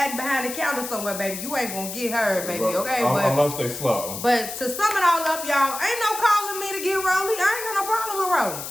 behind the counter somewhere, baby. You ain't gonna get her, baby. Okay, unless they slow. But to sum it all up, y'all, ain't no calling me to get ROLLIE. I ain't got no problem with ROLLIE.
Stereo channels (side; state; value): left; noise; hiss, 8 dB below the sound